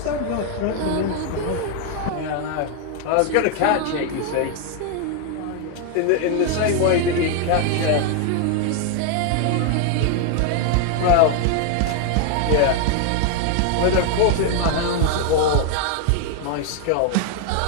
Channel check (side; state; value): both; different; correlation 0.00